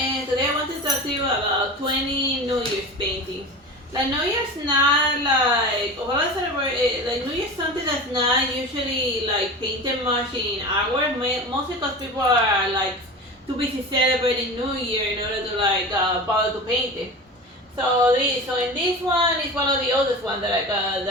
today I want to talk to you about 20 New Year's paintings. Like New Year's not like, what I celebrate, like New Year's something that's not usually like painted much in artwork, mostly because people are like too busy celebrating New Year in order to like bother to paint it. So in this one, it's one of the oldest ones that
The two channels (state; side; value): normal; both; correlation 0.31